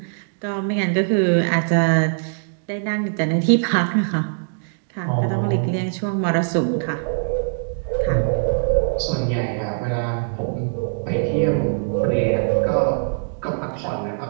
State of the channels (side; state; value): left; silent; digital silence